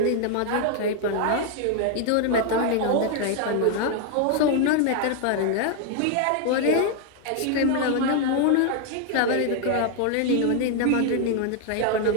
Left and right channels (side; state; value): both; different; correlation 0.00